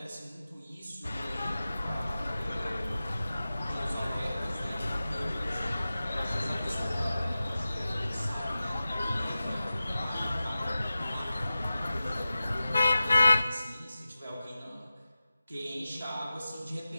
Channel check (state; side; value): inverted; both; correlation -0.95